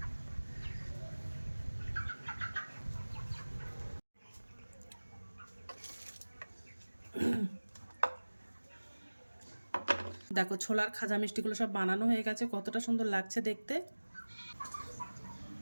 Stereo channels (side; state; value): both; inverted; correlation -1.00